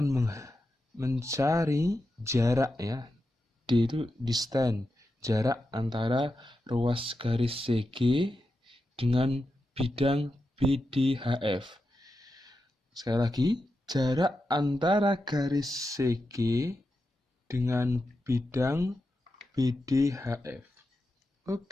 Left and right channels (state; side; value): normal; both; correlation 0.89